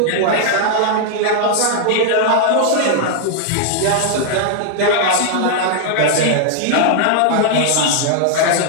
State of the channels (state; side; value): different; both; correlation -0.01